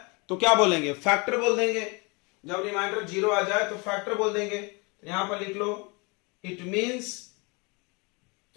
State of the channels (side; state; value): right; quieter; 29.3 dB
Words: तो क्या बोलेंगे, फैक्टर बोल देंगे। जब रिमाइंडर 0 आ जाए तो फैक्टर बोल देंगे। तो यहां पर लिख लो, इट मींस,